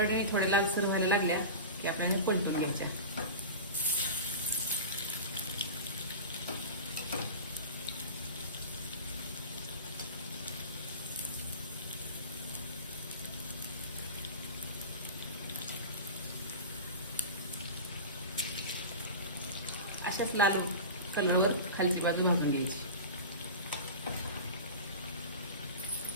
थोडे लालसर व्हायला लागल्या की आपल्याला पलटून घ्यायच्या. अशाच लाल कलरवर खालची बाजू भाजून घ्यायची.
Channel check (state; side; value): inverted; both; correlation -0.31